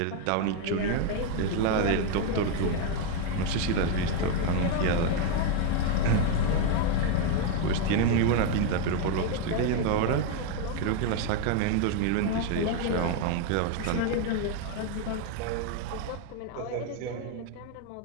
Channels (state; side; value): different; both; correlation 0.01